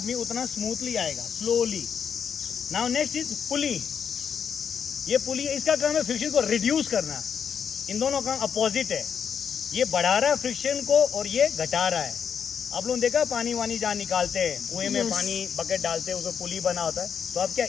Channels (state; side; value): quieter; right; 7.3 dB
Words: उतना स्मूथली आएगा, स्लोली। नाउ नेक्स्ट इज पुली। ये पुली, इसका काम है फ्रिक्शन को रिड्यूस करना। इन दोनों का अपोजिट है, ये बढ़ा रहा है फ्रिक्शन को और ये घटा रहा है। आप लोगों ने देखा पानी वानी जहाँ निकालते हैं, कुएं में पानी बकेट डालते हैं, उसमें पुली बना होता है, तो आप क्या